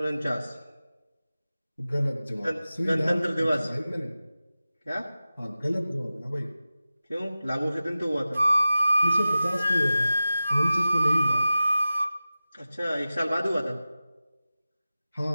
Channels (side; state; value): both; inverted; correlation -0.95